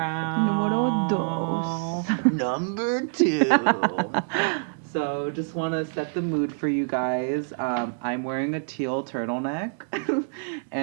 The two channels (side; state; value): left; silent; digital silence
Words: bow. Number 2. So just want to set the mood for you guys. I'm wearing a teal turtleneck